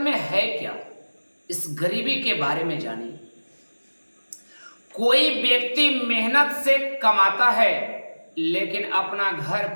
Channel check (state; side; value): inverted; both; correlation -1.00